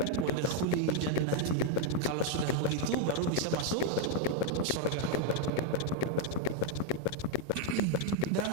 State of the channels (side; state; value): both; different; correlation 0.01